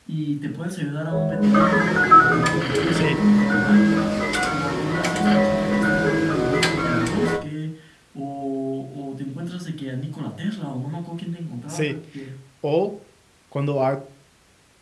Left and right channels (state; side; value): identical; both; correlation 1.00